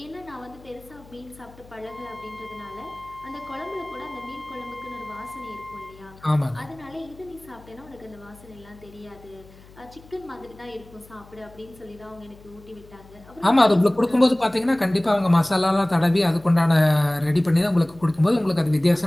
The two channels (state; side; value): noise; left; hum, 23 dB below the sound